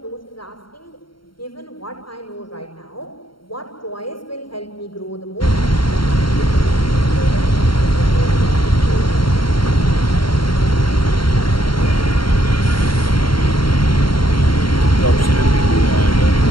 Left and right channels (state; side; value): late; right; 0.73 ms